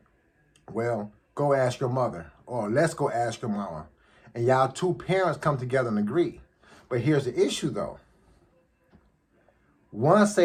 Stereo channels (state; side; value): identical; both; correlation 1.00